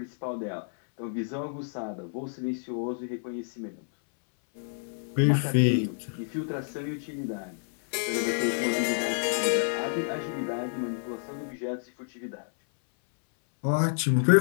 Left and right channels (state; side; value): silent; right; 59 dB below the other